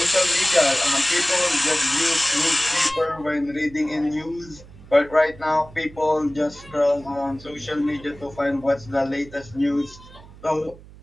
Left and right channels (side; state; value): right; noise; hum, 20 dB below the sound